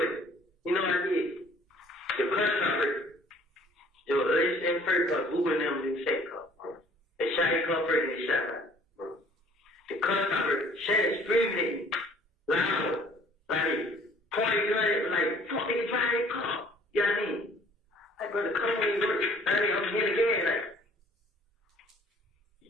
you know what I did? The press conference, it was in first car, Uber and them in the second car. They shot his car first and they shot mine. The press conference, Shannon screaming at me, loud, like, pointing gun at me, like, fuck, nigga, drive that car. You know what I mean? Like, brother, come on, you work. I mean, I'm here again, like,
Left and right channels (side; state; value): both; normal; correlation 0.56